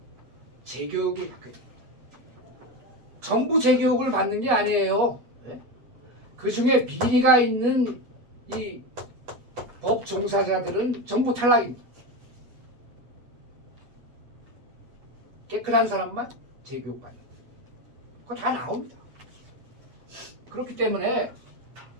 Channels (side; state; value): left; late; 8.4 ms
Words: 재교육을 받게 됩니다. 전부 재교육을 받는 게 아니에요. 네? 그 중에 비리가 있는 이 법 종사자들은 전부 탈락입니다. 깨끗한 사람만 재교육 받는다. 그거 다 나옵니다. 그렇기 때문에